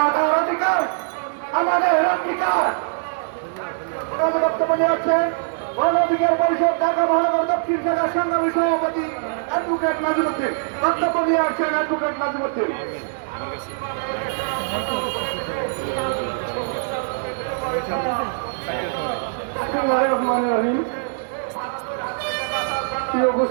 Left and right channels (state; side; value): silent; left; digital silence